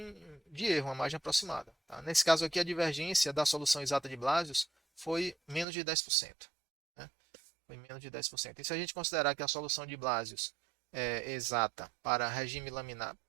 de erro, uma margem aproximada. Tá? Nesse caso aqui, a divergência da solução exata de Blasius foi menos de 10%. Né? foi menos de 10%. E se a gente considerar que a solução de Blasius é exata para regime laminar,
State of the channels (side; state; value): left; drops out; at 5.7 s